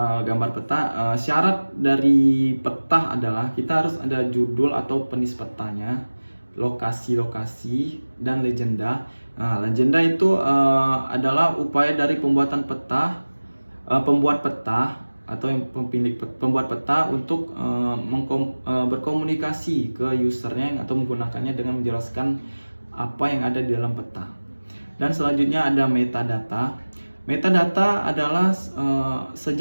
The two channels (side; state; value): both; inverted; correlation -1.00